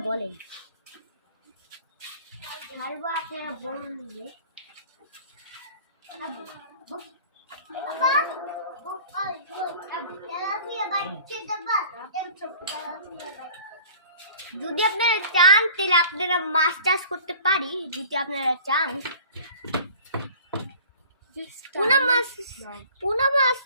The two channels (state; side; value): inverted; both; correlation -0.47